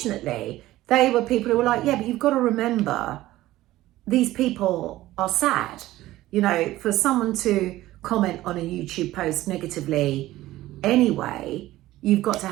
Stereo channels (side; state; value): left; quieter; 16.0 dB